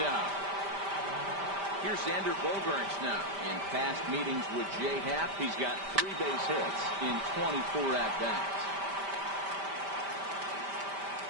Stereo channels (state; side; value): late; left; 5.1 ms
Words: out. Here's Xander Bogaerts now. In past meetings with Jay Happ, he's got 3 base hits in 24 at-bats.